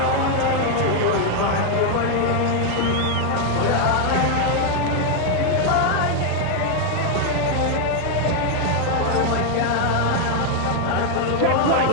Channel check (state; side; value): different; both; correlation 0.01